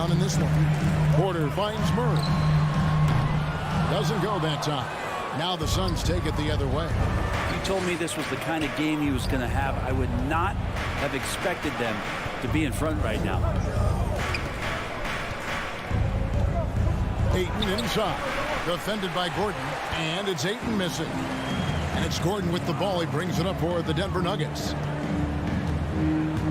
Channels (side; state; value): both; identical; correlation 1.00